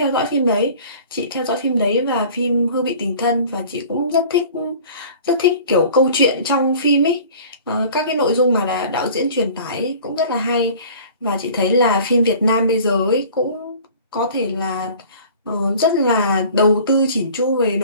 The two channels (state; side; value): inverted; both; correlation -0.46